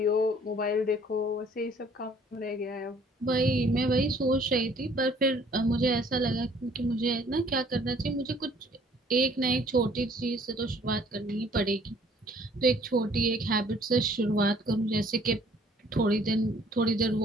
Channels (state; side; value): normal; both; correlation 0.58